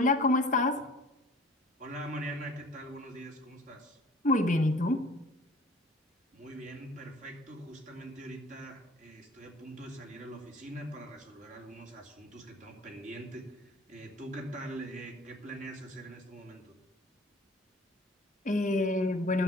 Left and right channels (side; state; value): both; normal; correlation 0.47